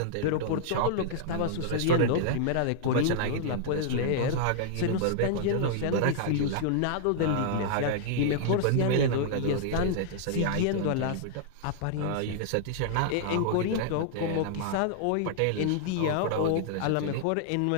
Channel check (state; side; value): different; both; correlation -0.01